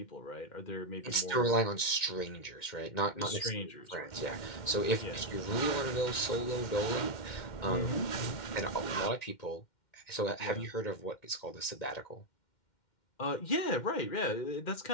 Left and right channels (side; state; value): right; late; 2.1 ms